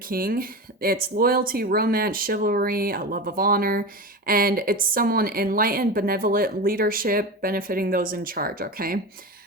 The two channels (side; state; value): both; normal; correlation 0.25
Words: it's loyalty, romance, chivalry, a love of honor, and it's someone enlightened, benevolent, leadership, benefiting those in charge, okay?